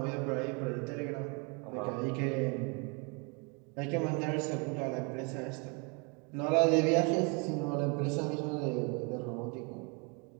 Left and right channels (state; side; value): quieter; left; 31.8 dB